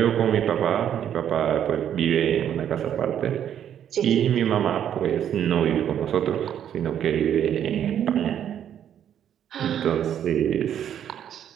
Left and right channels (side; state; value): left; quieter; 9.7 dB